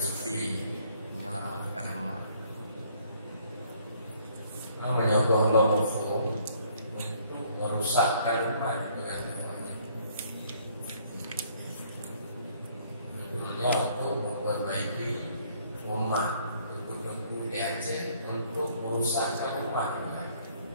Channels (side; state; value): both; inverted; correlation -0.62